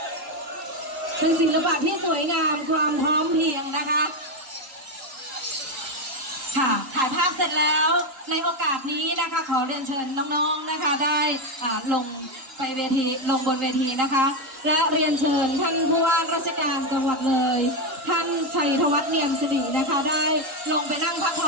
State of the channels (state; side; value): late; left; 3.8 ms